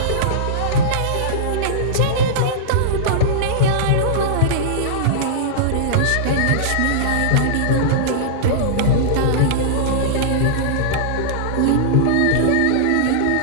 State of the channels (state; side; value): different; both; correlation -0.03